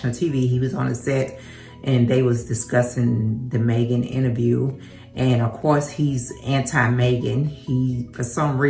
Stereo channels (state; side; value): identical; both; correlation 1.00